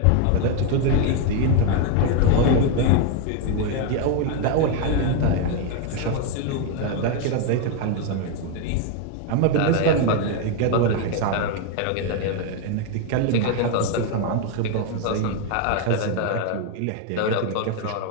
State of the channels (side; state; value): both; different; correlation 0.01